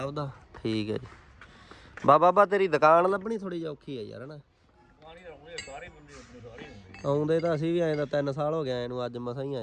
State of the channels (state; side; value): identical; both; correlation 1.00